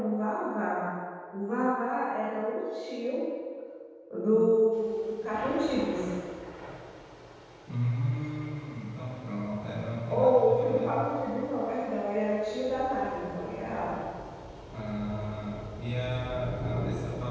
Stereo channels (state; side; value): identical; both; correlation 1.00